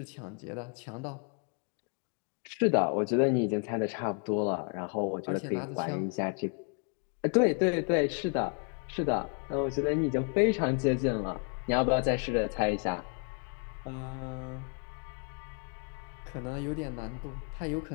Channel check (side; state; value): right; quieter; 39.0 dB